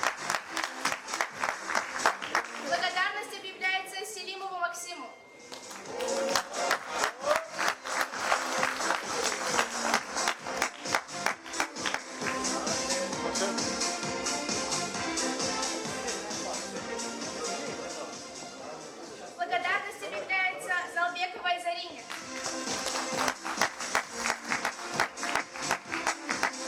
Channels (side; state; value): both; identical; correlation 1.00